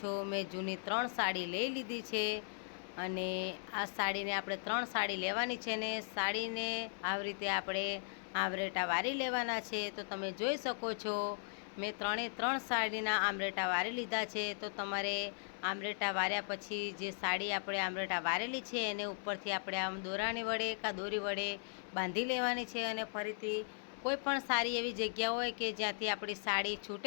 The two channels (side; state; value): right; silent; digital silence